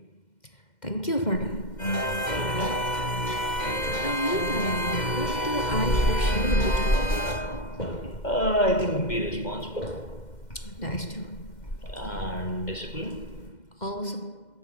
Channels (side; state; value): right; late; 2.1 ms